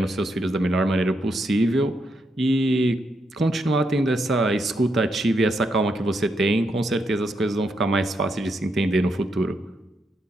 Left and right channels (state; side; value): normal; both; correlation 0.80